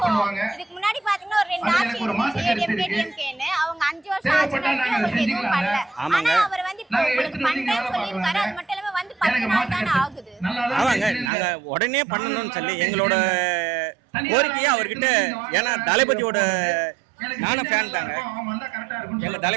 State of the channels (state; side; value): drops out; left; at 11.3 s